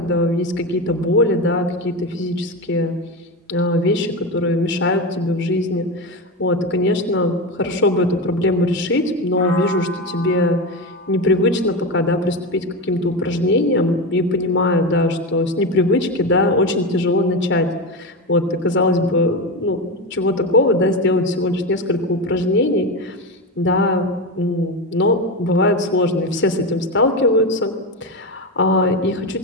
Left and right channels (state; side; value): normal; both; correlation 0.17